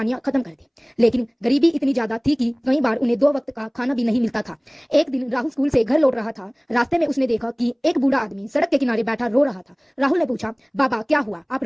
खत्म कर दे। लेकिन गरीबी इतनी ज्यादा थी कि कई बार उन्हें 2 वक्त का खाना भी नहीं मिलता था। एक दिन राहुल स्कूल से घर लौट रहा था। रास्ते में उसने देखा कि एक बूढ़ा आदमी सड़क के किनारे बैठा रो रहा था। राहुल ने पूछा, बाबा क्या हुआ, आप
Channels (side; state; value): both; identical; correlation 1.00